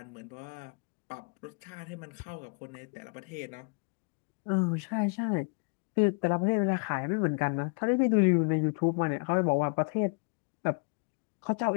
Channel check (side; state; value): right; quieter; 34.9 dB